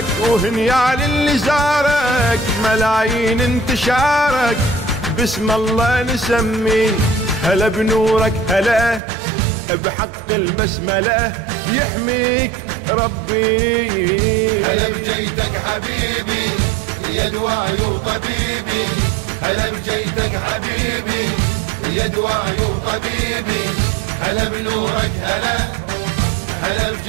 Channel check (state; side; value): drops out; left; at 9.0 s